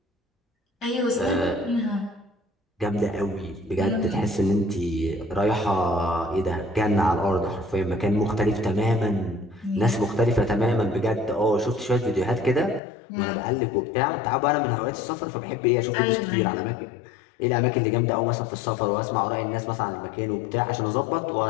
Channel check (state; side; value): drops out; right; at 12.8 s